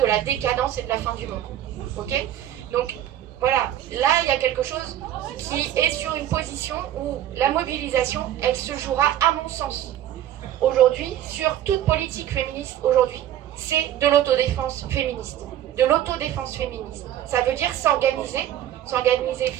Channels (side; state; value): left; quieter; 11.8 dB